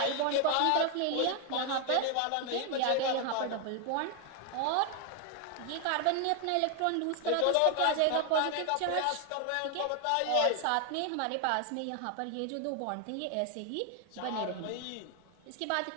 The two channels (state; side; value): different; both; correlation 0.01